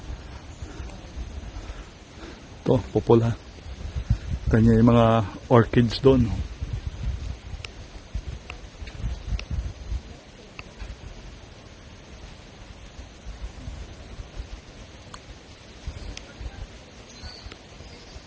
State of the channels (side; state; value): both; identical; correlation 1.00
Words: Ito, pupula. Kanya yung mga orchids doon.